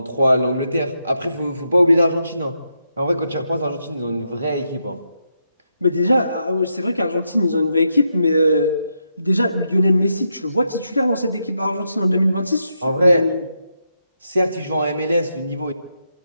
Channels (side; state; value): both; inverted; correlation -0.82